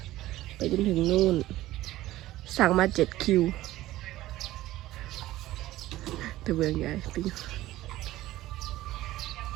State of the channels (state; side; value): quieter; left; 15.8 dB